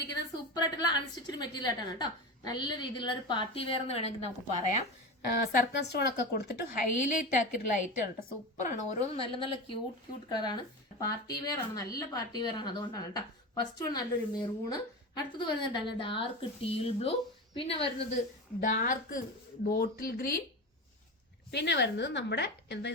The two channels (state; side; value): normal; both; correlation 0.24